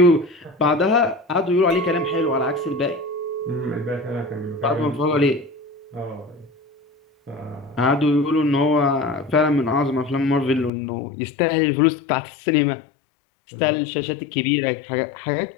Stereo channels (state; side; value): drops out; right; at 10.7 s